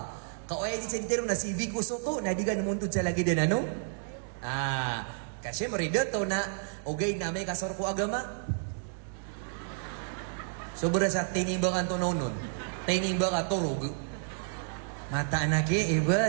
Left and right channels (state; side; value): silent; left; digital silence